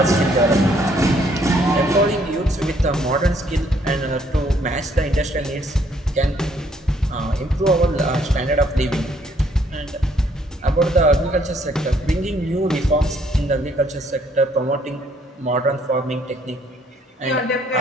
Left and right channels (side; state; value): both; normal; correlation 0.66